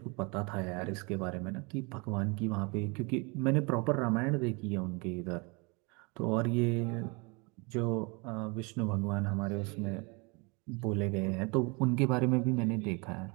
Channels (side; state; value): left; quieter; 29.5 dB